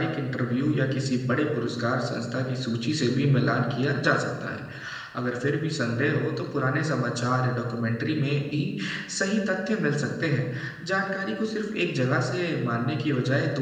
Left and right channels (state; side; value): identical; both; correlation 1.00